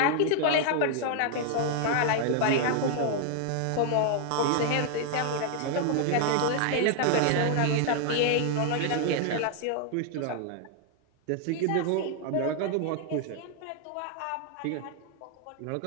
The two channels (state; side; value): different; both; correlation 0.00